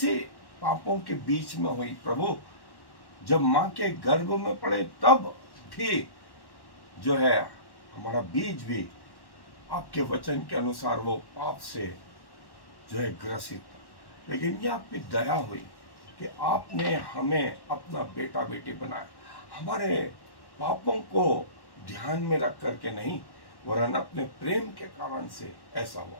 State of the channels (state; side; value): late; right; 1.1 ms